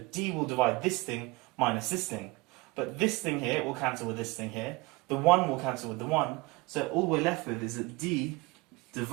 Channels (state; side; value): quieter; left; 23.9 dB